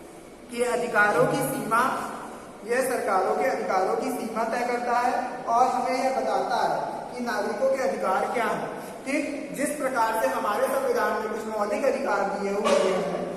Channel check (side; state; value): both; identical; correlation 1.00